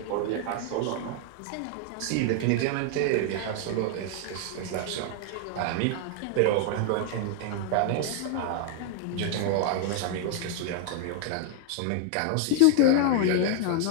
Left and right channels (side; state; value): both; different; correlation 0.00